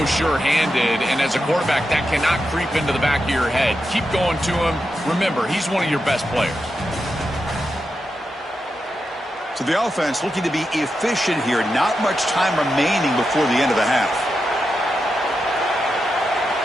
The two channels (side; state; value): both; normal; correlation 0.88